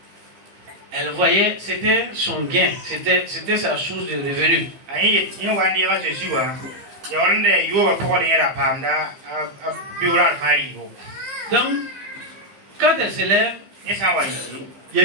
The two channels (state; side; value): late; left; 15 ms